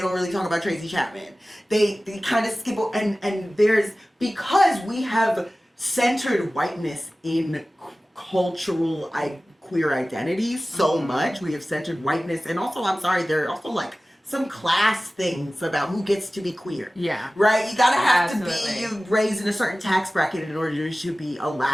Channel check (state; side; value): normal; both; correlation 0.97